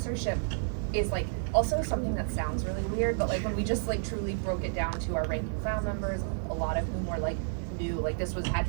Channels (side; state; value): left; silent; 57 dB below the other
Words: is like also something that sounds really weird, but like when we just like truly broke it down to our rank and file members, a lot of whom were like new, like this had